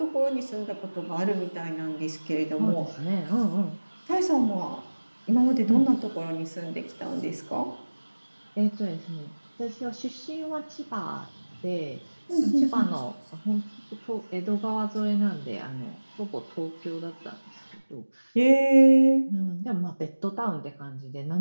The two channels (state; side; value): inverted; both; correlation -1.00